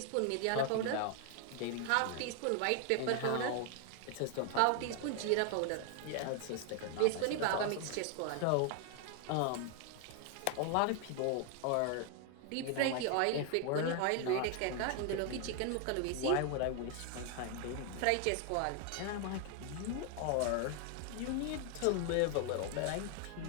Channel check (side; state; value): both; different; correlation 0.00